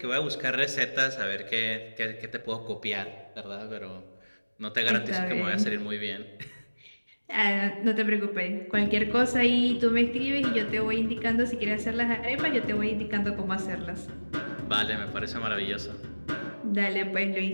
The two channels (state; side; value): inverted; both; correlation -1.00